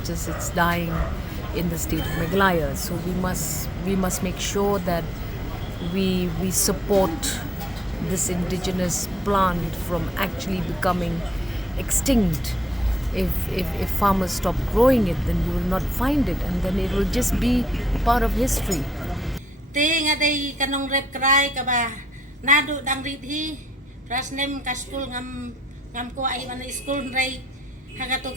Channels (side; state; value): both; normal; correlation 0.75